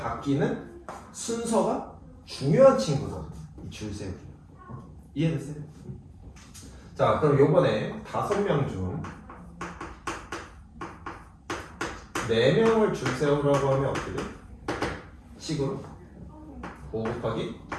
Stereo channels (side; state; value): both; identical; correlation 1.00